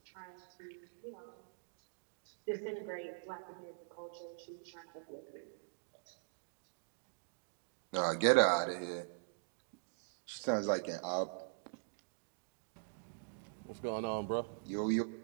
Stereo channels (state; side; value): silent; left; digital silence